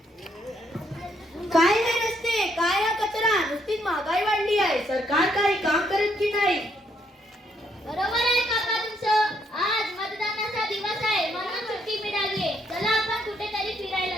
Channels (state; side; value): normal; both; correlation 0.72